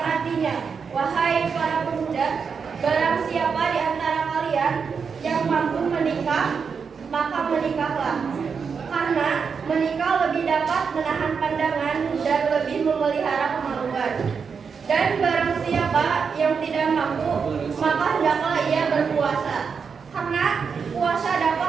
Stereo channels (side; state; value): left; quieter; 5.9 dB